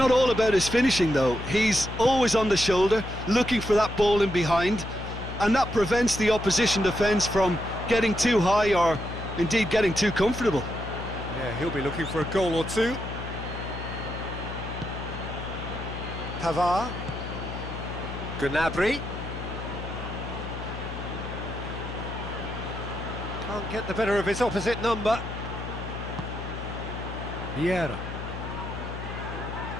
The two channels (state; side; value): noise; left; hum, 8 dB below the sound